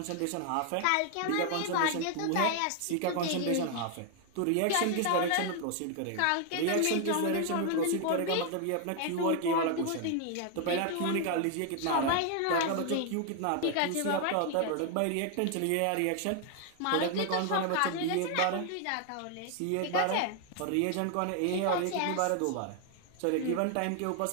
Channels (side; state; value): both; different; correlation 0.00